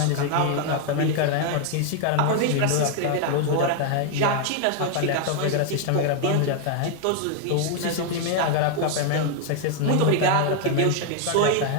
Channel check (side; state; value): both; different; correlation 0.00